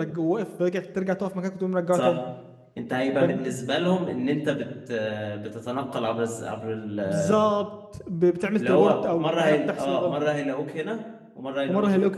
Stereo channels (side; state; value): both; identical; correlation 1.00